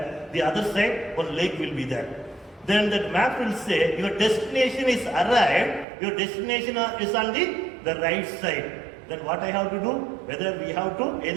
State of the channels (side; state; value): left; drops out; at 5.9 s